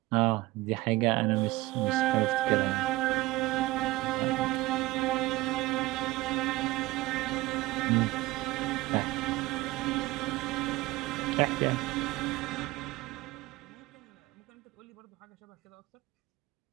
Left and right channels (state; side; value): quieter; left; 19.3 dB